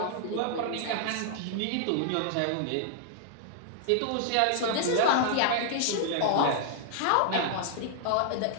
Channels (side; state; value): both; different; correlation -0.01